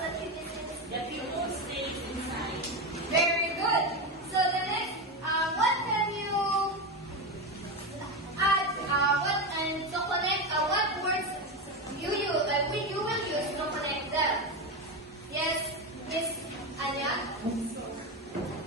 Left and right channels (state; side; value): normal; both; correlation 0.16